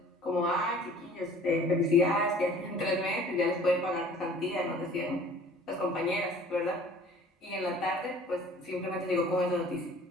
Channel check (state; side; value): normal; both; correlation 0.49